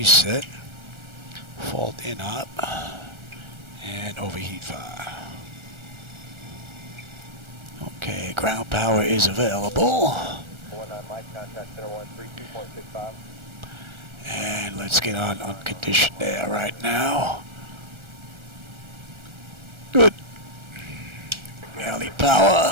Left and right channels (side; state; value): left; late; 1.3 ms